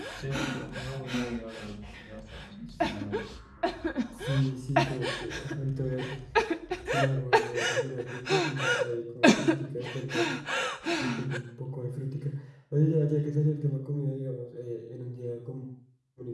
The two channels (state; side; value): identical; both; correlation 1.00